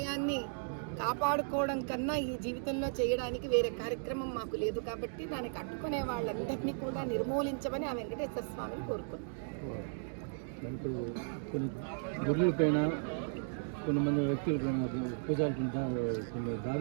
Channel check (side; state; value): left; silent; digital silence